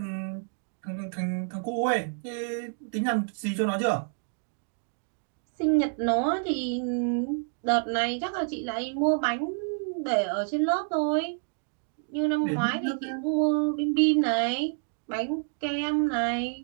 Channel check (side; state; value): left; silent; 56 dB below the other